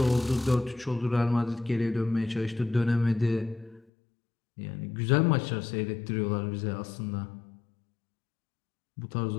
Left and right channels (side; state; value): right; drops out; at 3.8 s